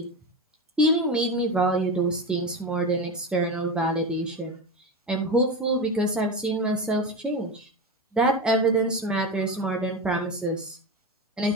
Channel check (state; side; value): normal; both; correlation 0.21